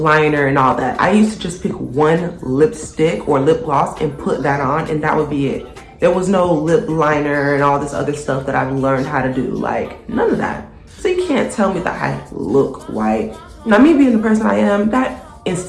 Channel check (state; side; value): identical; both; correlation 1.00